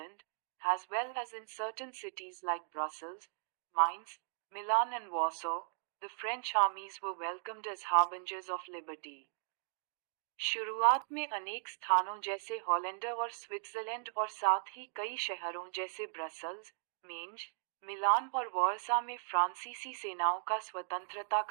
as well as in certain cities like Brussels, Mainz, Milan and Warsaw, the French armies were welcomed as harbingers of liberty. शुरुआत में अनेक स्थानों जैसे हॉलैंड और स्विट्जरलैंड और साथ ही कई शहरों जैसे ब्रसल्स, मेंज, मिलान और वॉर्सा में फ्रांसीसी सेनाओं का स्वतंत्रता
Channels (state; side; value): silent; left; digital silence